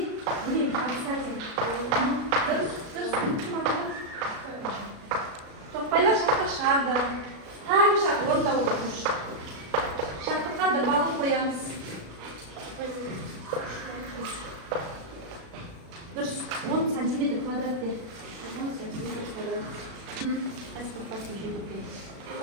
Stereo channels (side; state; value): left; late; 36 ms